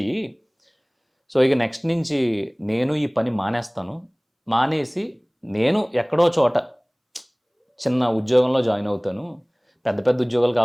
సో, ఇక నెక్స్ట్ నుంచి నేను ఈ పని మానేస్తాను. మానేసి నేను ఎక్కడో చోట చిన్న ఉద్యోగంలో జాయిన్ అవుతాను. పెద్ద పెద్ద ఉద్యోగాలు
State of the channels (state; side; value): identical; both; correlation 1.00